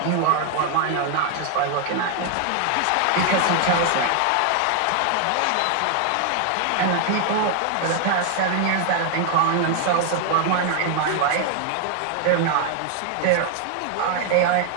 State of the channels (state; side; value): different; both; correlation 0.00